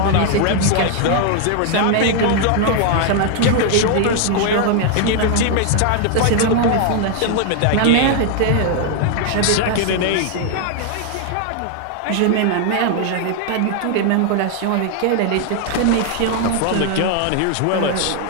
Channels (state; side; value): different; both; correlation 0.00